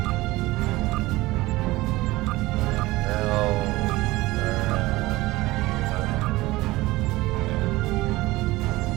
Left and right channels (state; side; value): quieter; left; 19.4 dB